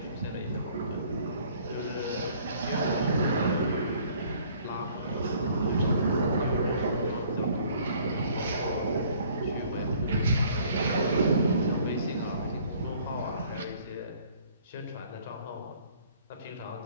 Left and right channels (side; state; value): both; inverted; correlation -0.57